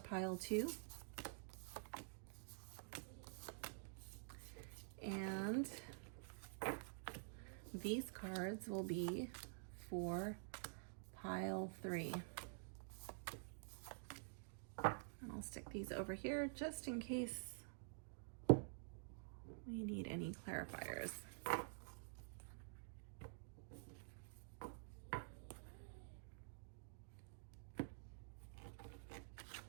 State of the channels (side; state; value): left; silent; digital silence